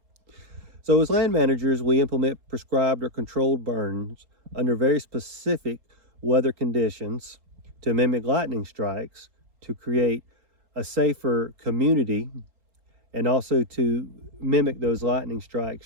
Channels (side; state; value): left; late; 3.9 ms